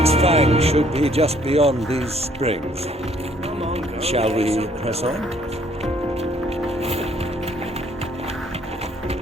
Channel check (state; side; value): normal; both; correlation 0.63